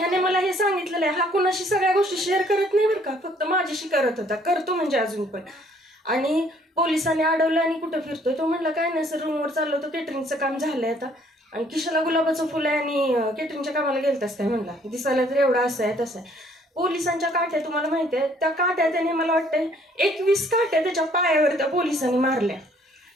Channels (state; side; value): normal; both; correlation 0.62